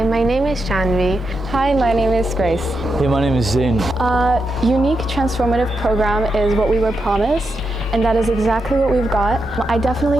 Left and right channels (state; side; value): normal; both; correlation 0.85